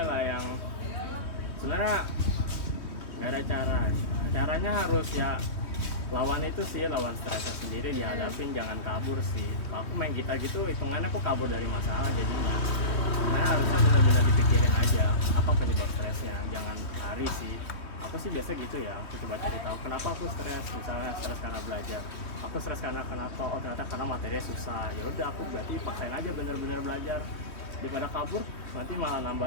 lah yang sebenarnya nggak ada caranya harus ya lawan itu sih, lawan stresnya sendiri, dihadapin, jangan kabur sih. Aku main gitar gitu hitungannya aku kabur dari masalah jadinya. Nah harusnya benar-benar dipikirin aja apa penyebab stresnya, jangan lari sih. Aku sih biasa gitu ya, aku coba cari tahu kenapa aku stres. Misalnya stres karena belajar, aku stres karena kenapa? Oh ternyata karena materinya susah. Ya udah aku berarti paksain aja benar-benar belajar, daripada kabur nanti malah nambah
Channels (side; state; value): right; late; 3.2 ms